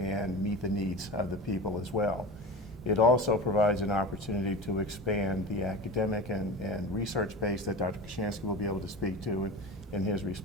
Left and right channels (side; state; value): both; normal; correlation 0.30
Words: meet the needs of the people as well. It also provides an opportunity to expand the academic and research base that Dr. Kochanski will be able to speak to in his